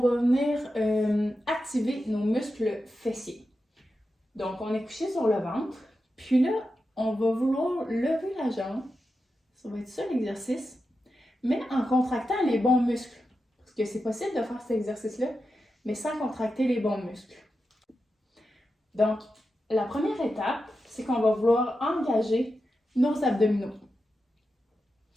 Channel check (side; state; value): both; normal; correlation 0.90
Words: venir activer nos muscles fessiers. Donc on est couché sur le ventre, puis là, on va vouloir lever la jambe. Ça va être ça l'exercice, mais en contractant les bons muscles. Parce que c'est possible de faire cet exercice-là, mais sans contracter les bons muscles. Donc, la première étape, c'est qu'on va vouloir engager nos abdominaux.